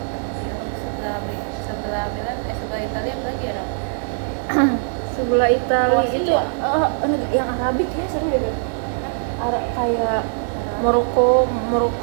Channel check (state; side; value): silent; left; digital silence